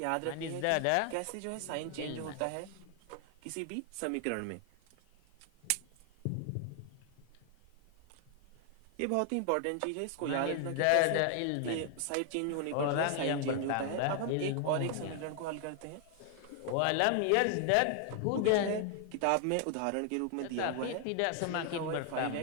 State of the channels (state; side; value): different; both; correlation 0.00